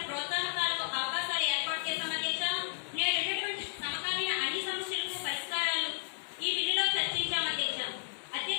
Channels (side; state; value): right; silent; 56 dB below the other